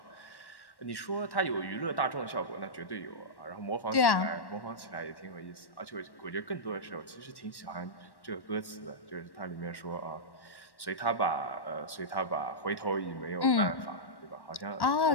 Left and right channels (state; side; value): late; right; 1.1 ms